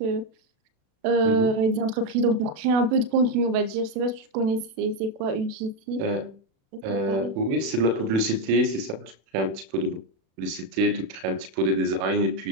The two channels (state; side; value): late; left; 36 ms